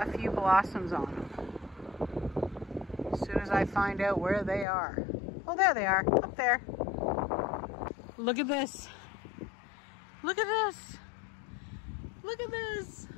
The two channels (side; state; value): right; drops out; at 4.7 s